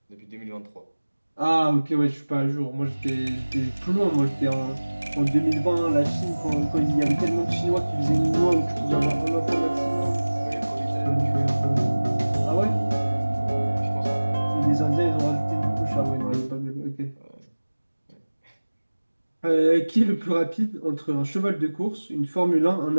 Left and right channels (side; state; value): both; inverted; correlation -1.00